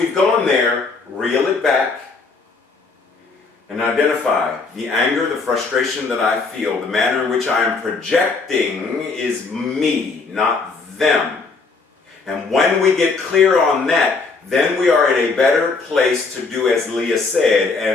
gone there, reel it back and identify the anger, the frustration that I feel, the manner in which I am projecting is me, not them. And when we get clear on that, then we are at a better place to do as Leah said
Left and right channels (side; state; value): right; quieter; 4.2 dB